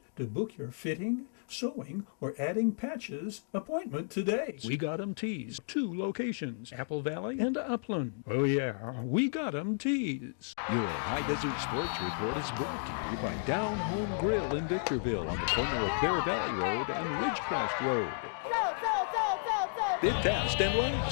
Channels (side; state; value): right; silent; digital silence